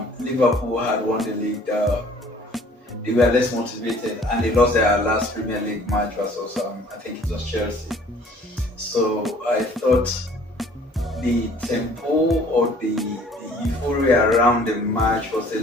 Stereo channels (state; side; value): normal; both; correlation 0.54